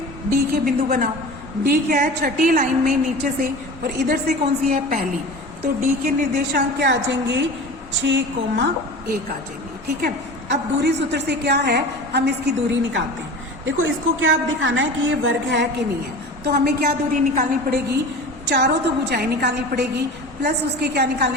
D के बिंदु बनाओ। D क्या है, छठी लाइन में नीचे से और इधर से कौन सी है, पहली। तो D के निर्देशांक क्या आ जाएंगे, 6,1 आ जाएंगे। ठीक है, अब दूरी सूत्र से क्या है, हम इसकी दूरी निकालते हैं। देखो इसको क्या अब दिखाना है कि ये वर्ग है कि नहीं है। तो हमें क्या दूरी निकालनी पड़ेगी, चारों तो भुजाएं निकालनी पड़ेगी प्लस उसके क्या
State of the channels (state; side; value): normal; both; correlation 0.35